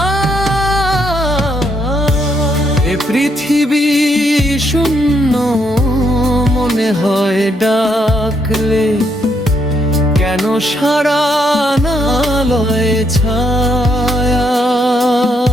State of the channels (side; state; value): both; normal; correlation 0.74